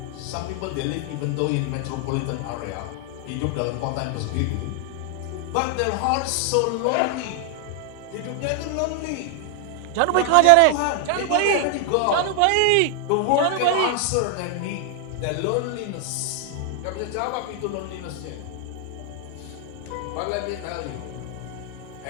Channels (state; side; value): different; both; correlation 0.00